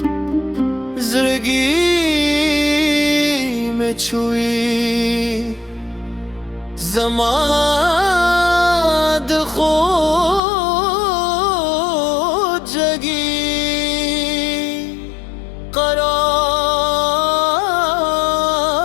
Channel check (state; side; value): drops out; right; at 10.4 s